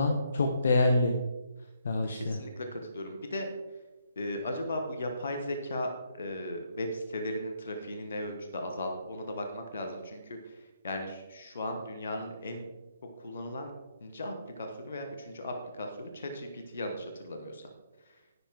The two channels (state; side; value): inverted; both; correlation -0.74